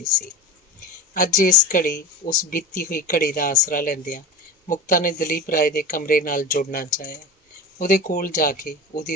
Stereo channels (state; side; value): normal; both; correlation 0.27